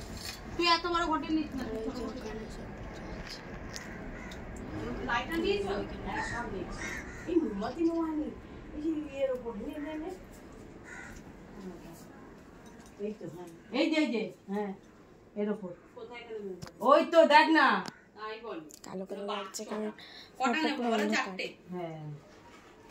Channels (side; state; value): both; identical; correlation 1.00